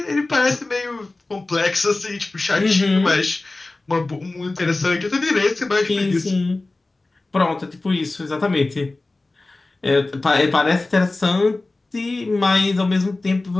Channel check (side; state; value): right; quieter; 3.1 dB